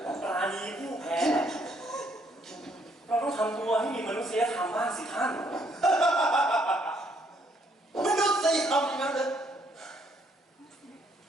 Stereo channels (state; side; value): normal; both; correlation 0.69